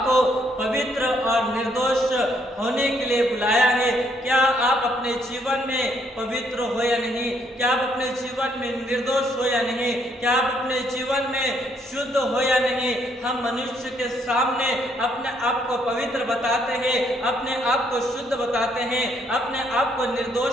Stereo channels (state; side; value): normal; both; correlation 0.70